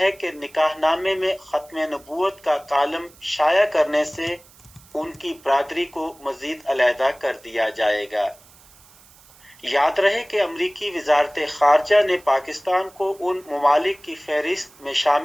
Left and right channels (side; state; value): right; noise; hiss, 26 dB below the sound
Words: कि निकाहनामे में खत्म नबूवत का कालम शाया करने से उनकी बरादरी को मजीद अलहदा कर दिया जाएगा। याद रहे कि अमरीकी वजारत खारजा ने पाकिस्तान को उन ममालिक की फहरिस्त में